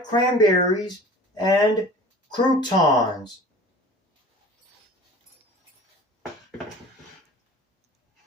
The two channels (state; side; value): normal; both; correlation 0.43